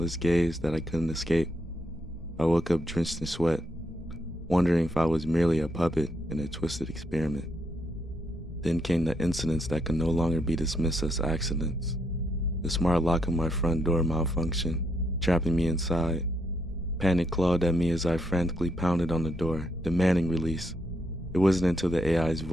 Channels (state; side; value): normal; both; correlation 0.77